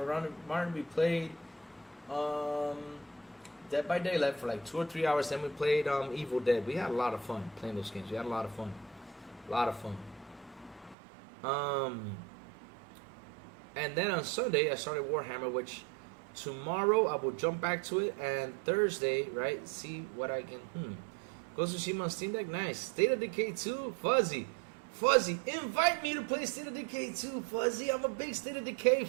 Martin. We played Dead by Daylight for like 2 or 3 hours. Then we played Evil Dead. We had a lot of fun playing those games. We had a lot of fun. A lot of fun. And then on Sunday, I started Warhammer, which tomorrow I will jump back to it. And Thursday, right, see what I can... Ghost of Tsushima on Steam Deck, nice. State of Decay 2, Fuzzy, invite me to play State of Decay 2, Fuzzy. I'm a big State of Decay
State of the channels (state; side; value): drops out; left; at 11.0 s